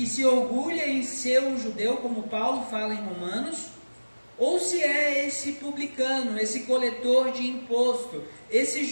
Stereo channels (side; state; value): both; inverted; correlation -1.00